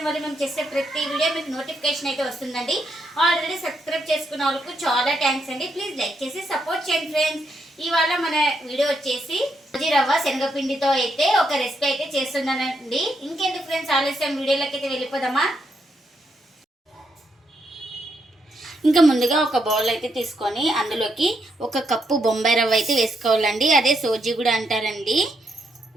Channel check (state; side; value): normal; both; correlation 0.78